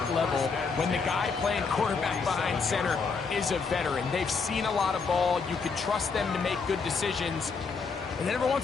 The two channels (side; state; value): right; quieter; 5.0 dB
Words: level when the guy playing quarterback behind center is a veteran. They've seen a lot of ball. You can trust them to make good decisions. And then every